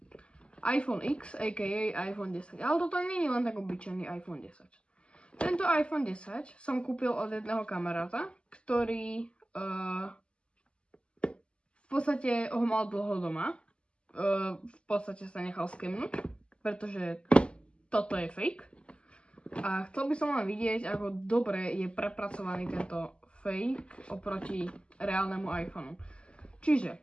iPhone X, a.k.a. iPhone 10, ale toto nie je len tak obyčajný iPhone 10. Tento iPhone 10 som kúpil od jedného kamaráta, ktorý v podstate ho mal dlho doma. V podstate sa nechal skemnúť, pretože toto je fake. A chcel by som len vidieť, ako dobre je prepracovaný tento fake oproti reálnemu iPhoneu.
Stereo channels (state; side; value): late; right; 0.053 ms